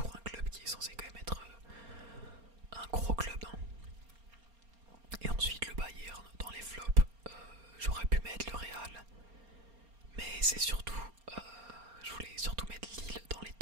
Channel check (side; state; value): left; late; 4.3 ms